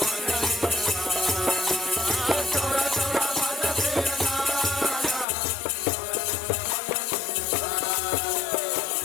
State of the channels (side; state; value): right; drops out; at 5.2 s